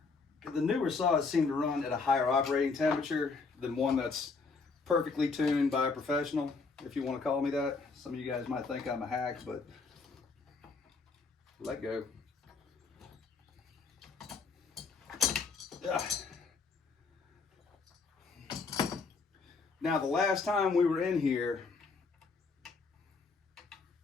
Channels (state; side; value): quieter; right; 4.5 dB